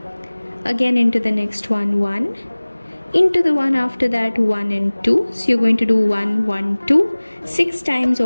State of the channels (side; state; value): both; inverted; correlation -1.00